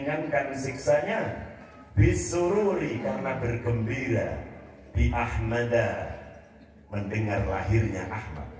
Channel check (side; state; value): both; identical; correlation 1.00